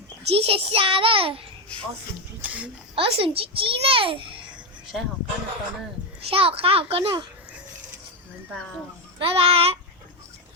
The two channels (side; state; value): both; normal; correlation 0.08